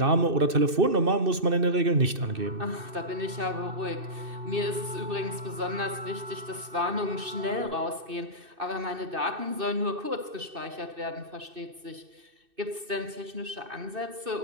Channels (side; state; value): left; late; 2.6 ms